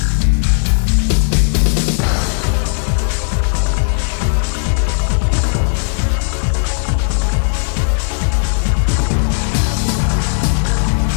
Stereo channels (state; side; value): silent; right; 61 dB below the other